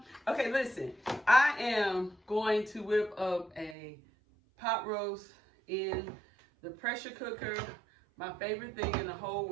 Okay, listen. I am going to whip up a pot roast in the pressure cooker. My favorite thing in the whole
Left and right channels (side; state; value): left; drops out; at 3.8 s